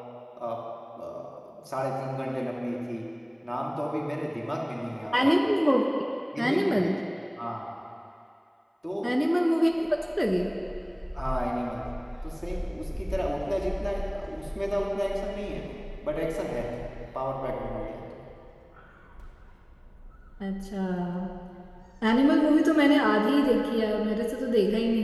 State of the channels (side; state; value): both; identical; correlation 1.00